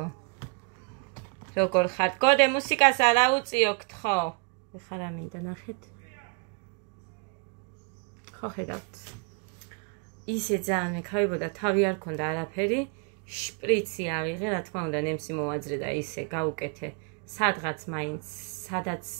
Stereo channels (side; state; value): left; quieter; 36.7 dB